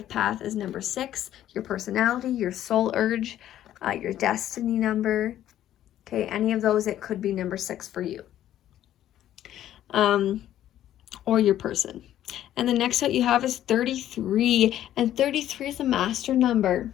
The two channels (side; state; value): right; quieter; 12.1 dB